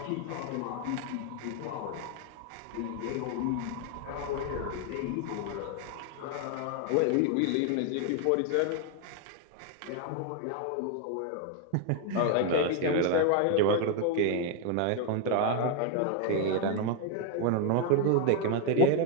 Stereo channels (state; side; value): different; both; correlation 0.01